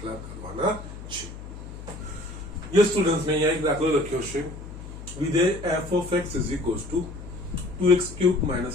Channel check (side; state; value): left; noise; hum, 12 dB below the sound